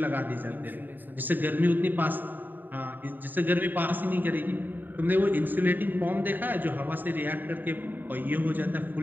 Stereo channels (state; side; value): late; left; 0.090 ms